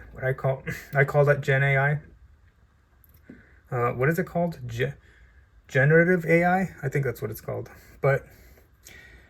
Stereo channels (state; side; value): identical; both; correlation 1.00